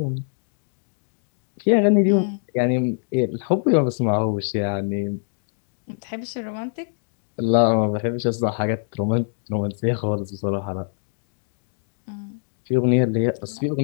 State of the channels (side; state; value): right; silent; digital silence